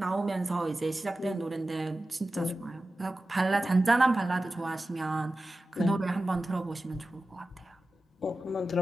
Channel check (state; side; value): normal; both; correlation 0.94